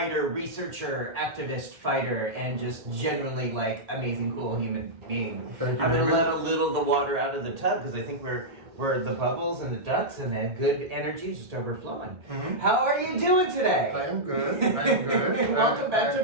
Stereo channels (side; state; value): left; late; 1.5 ms